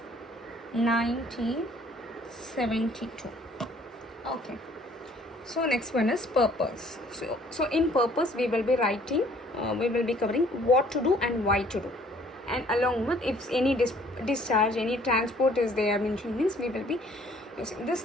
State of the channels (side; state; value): both; normal; correlation 0.59